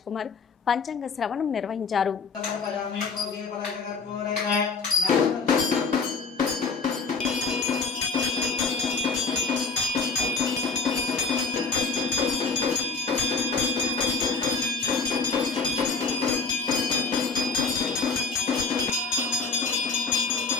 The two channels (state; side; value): quieter; right; 4.6 dB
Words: కుమార్ పంచాంగ శ్రవణం నిర్వహించారు.